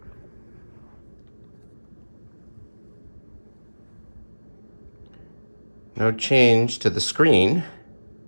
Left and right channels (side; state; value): both; inverted; correlation -1.00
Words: No change to the screen.